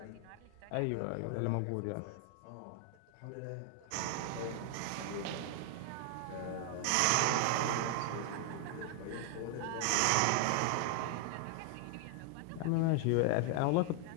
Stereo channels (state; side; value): different; both; correlation 0.00